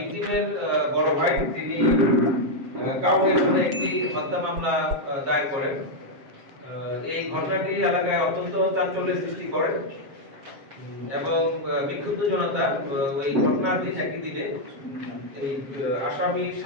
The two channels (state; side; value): late; left; 7.5 ms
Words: বড় ভাই তিনি কাউনিয়া থানায় একটি হত্যা মামলা দায়ের করেন। এই ঘটনাটি এলাকায় অত্যন্ত চাঞ্চল্যের সৃষ্টি করে এবং বিক্ষুব্ধ জনতা ওই ঘটনার দিন একই দিনে এই আসামি